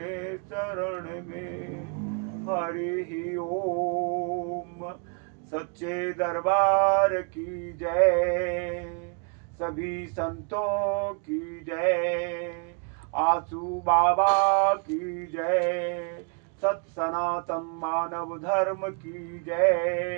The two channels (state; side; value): quieter; left; 36.9 dB